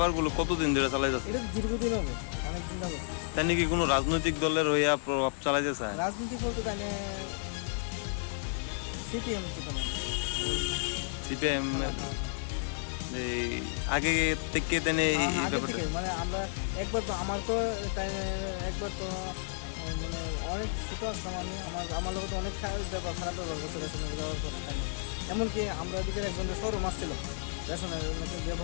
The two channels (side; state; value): right; silent; digital silence